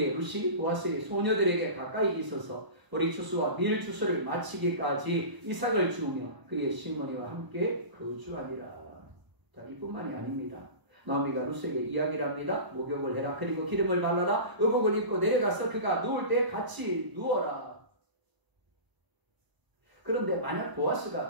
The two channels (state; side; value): late; left; 1.0 ms